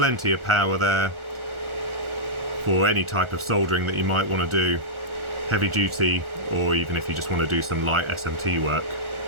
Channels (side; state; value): left; late; 1.4 ms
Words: of power there for any type of soldering that you might want to do, heavy duty, or even if you just want to do some light SMT work.